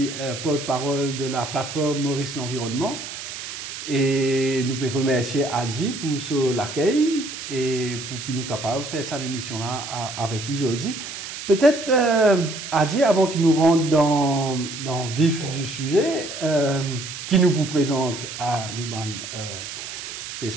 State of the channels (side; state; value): right; noise; hiss, 9 dB below the sound